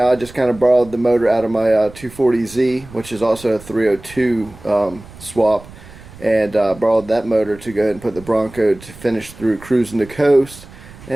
I just kind of borrowed the motor out of my 240Z, which is also a 302 swap, and borrowed that motor to go ahead and put the Bronco to finish through cruising the coast.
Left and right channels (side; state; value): right; noise; rumble, 19 dB below the sound